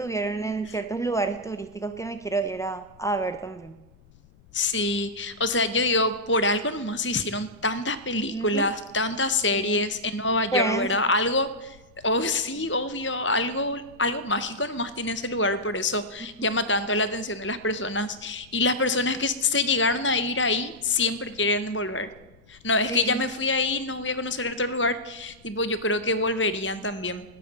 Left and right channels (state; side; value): noise; left; rumble, 27 dB below the sound